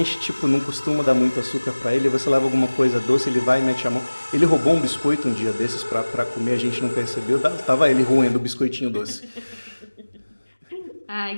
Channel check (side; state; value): both; inverted; correlation -1.00